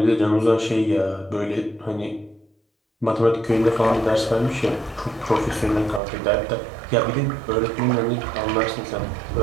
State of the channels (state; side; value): drops out; left; at 6.0 s